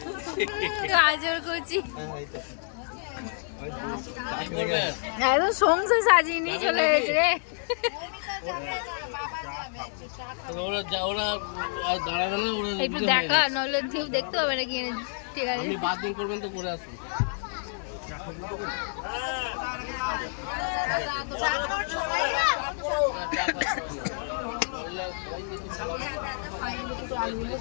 গাজর কুচি একদম সংসার সাজিয়ে নিয়ে চলে গেছে রে। একটু দেখা নইলে ঢিউ দেখতে হবে নাকি এনে। ঠিক আছে আপনি বাথরুম করবেন তো করে আসুন।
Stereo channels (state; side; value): silent; right; digital silence